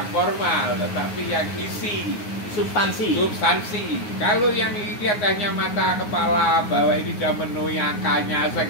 formal, tetapi yang isi. Substansi. Kalau yang dilihat hanya mata kepala bahwa ini sudah memenuhi angkanya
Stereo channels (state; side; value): late; right; 9.5 ms